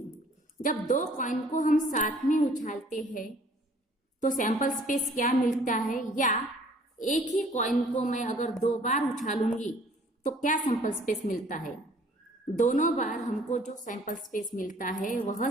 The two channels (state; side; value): normal; both; correlation 0.56